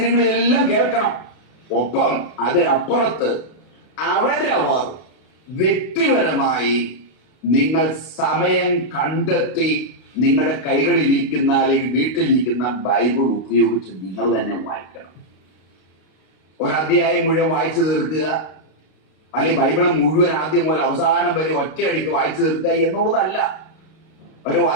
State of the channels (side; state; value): right; late; 32 ms